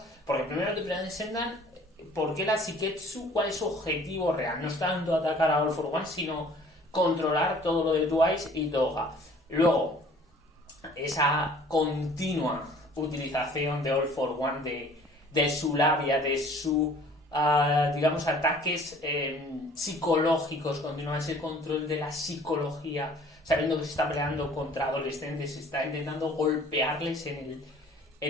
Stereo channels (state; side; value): normal; both; correlation 0.52